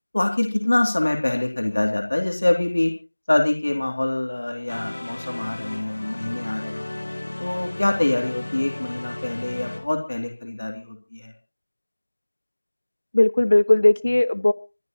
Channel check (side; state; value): both; inverted; correlation -1.00